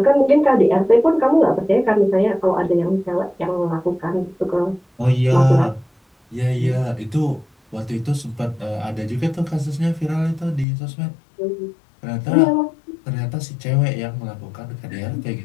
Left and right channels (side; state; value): right; drops out; at 10.7 s